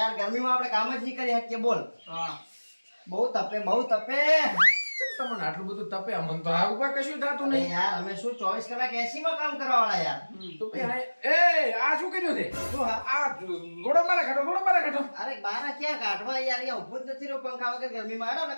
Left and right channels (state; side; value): inverted; both; correlation -1.00